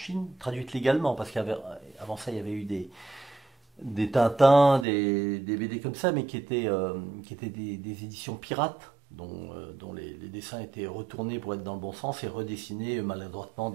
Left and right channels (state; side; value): drops out; left; at 4.9 s